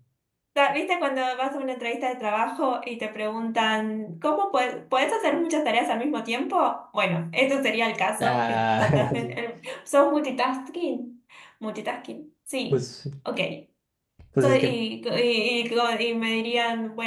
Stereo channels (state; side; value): identical; both; correlation 1.00